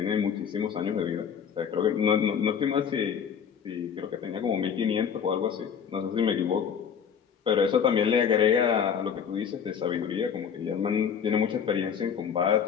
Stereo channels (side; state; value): right; quieter; 7.5 dB